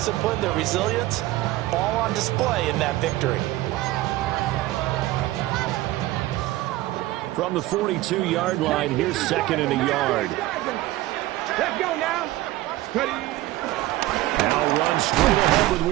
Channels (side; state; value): left; quieter; 17.0 dB